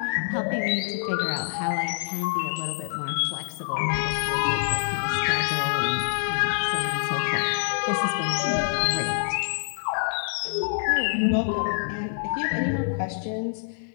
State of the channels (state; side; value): silent; right; 55 dB below the other